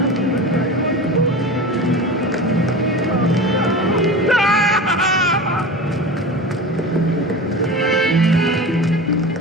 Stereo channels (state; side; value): normal; both; correlation 0.31